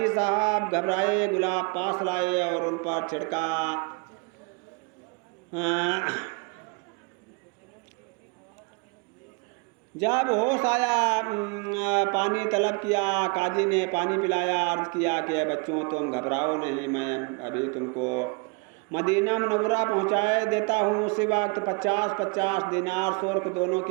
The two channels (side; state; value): left; quieter; 32.3 dB